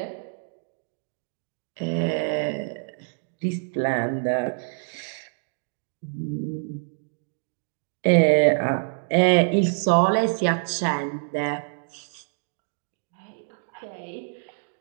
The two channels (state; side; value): silent; left; 61 dB below the other